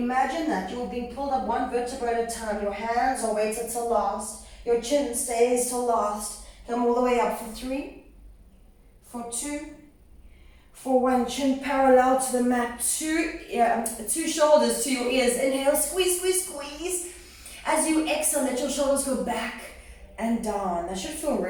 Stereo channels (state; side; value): identical; both; correlation 1.00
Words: that you're being pulled up one vertebra at a time. Your hands are weighted till last. Your chin stays till last. Come all the way up for 3, for 2, for 1. Chin parallel to the mat. 2 shoulders to your ears. Inhale, squeeze, squeeze, squeeze. As you exhale, let your shoulders go back and down. That should feel